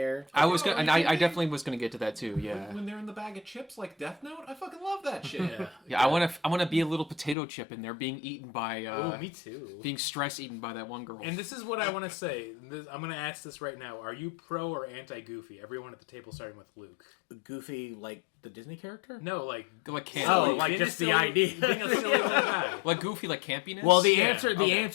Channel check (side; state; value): right; drops out; at 7.4 s